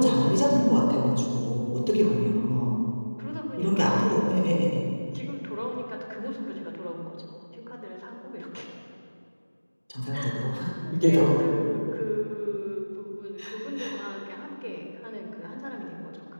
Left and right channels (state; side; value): inverted; both; correlation -1.00